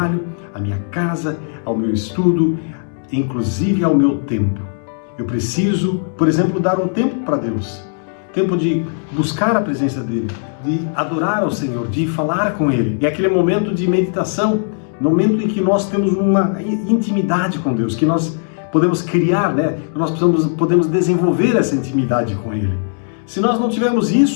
à minha casa, ao meu estudo, inclusive ao meu tempo. Eu preciso, por exemplo, dar um tempo para Deus, tempo de buscar a presença dEle, de adorar ao Senhor, de falar com Ele. É aquele momento de meditação, momento em que nós temos uma intimidade com Deus, que nós podemos criar, né? Nós podemos desenvolver essa intimidade com Ele. Se nós não tivermos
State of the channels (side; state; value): right; silent; 67 dB below the other